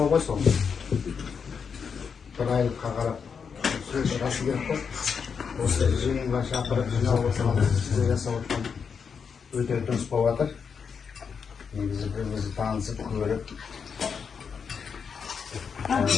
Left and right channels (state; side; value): quieter; right; 6.3 dB